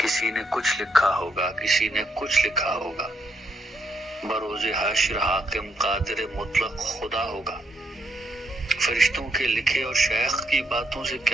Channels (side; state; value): both; normal; correlation 0.76